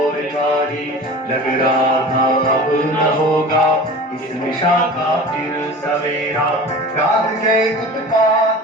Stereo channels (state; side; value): normal; both; correlation 0.37